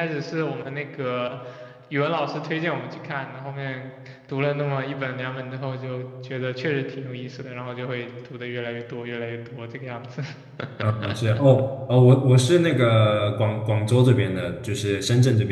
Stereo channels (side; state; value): both; identical; correlation 1.00